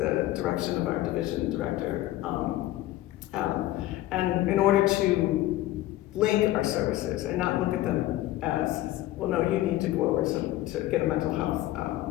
direction of our division director, and in order to link our services and not look at them as, well, no, you need to go over to get a mental health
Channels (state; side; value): quieter; right; 15.4 dB